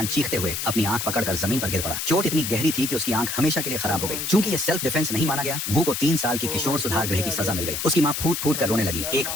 चीखते हुए अपनी आंख पकड़कर जमीन पर गिर पड़ा। चोट इतनी गहरी थी कि उसकी आंख हमेशा के लिए ओ खराब हो गई। भाई चूंकि ये साहब। सेल्फ डिफेंस नहीं माना गया, वू को 3 साल की ओ किशोर भाई सुधार कोर्ट गृह में की आ गया सजा मिल गई। सीधा। उसकी माँ फूट फूट कर भाई रोने लगी। इसका एक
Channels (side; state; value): left; noise; hiss, 3 dB below the sound